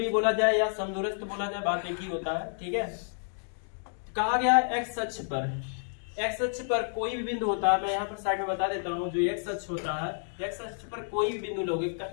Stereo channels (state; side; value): silent; right; digital silence